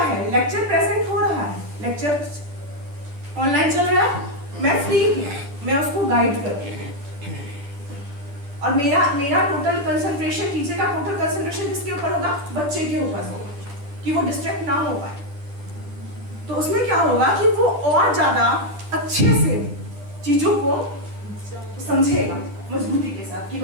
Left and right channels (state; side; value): late; left; 10 ms